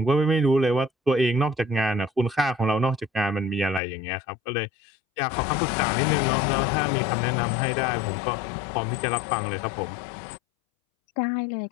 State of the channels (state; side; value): drops out; right; at 3.8 s